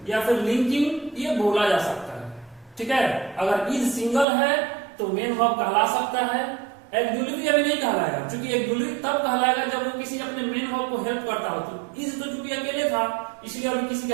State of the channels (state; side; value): drops out; left; at 4.2 s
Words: या फिर लिंकिंग ये बोला जा सकता है, ठीक है। अगर इज सिंगल है तो मेन वर्ब कहला सकता है, एक्सिलरी अभी नहीं कहलाएगा, क्योंकि एक्सिलरी तब कहलाएगा जब वो किसी अपने मेन वर्ब को हेल्प करता हो। तो इज तो चूंकि अकेले था इसलिए अभी किसी